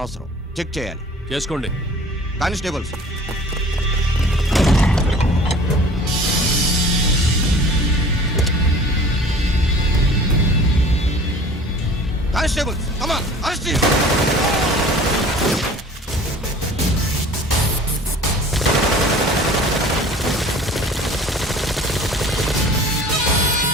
చెక్ చేయాలి. చేసుకోండి. Constables, constables, come on, arrest him.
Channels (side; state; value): both; normal; correlation 0.46